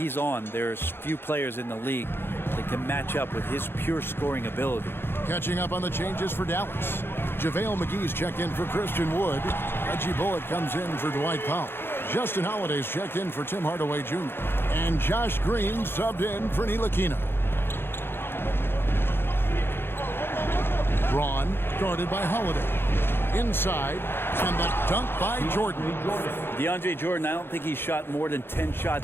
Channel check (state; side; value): late; right; 0.11 ms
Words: on, there's few players in the league that can match up with his pure scoring ability. Catching up on the changes for Dallas. JaVale McGee's checked in for Christian Wood. Reggie Bullock comes in for Dwight Powell. Justin Holiday's checked in for Tim Hardaway Jr. And Josh Green subbed in for Ntilikina. Braun guarded by Holiday. Inside, and the dunk by Jordan. DeAndre Jordan, I don't think he's shot more than 10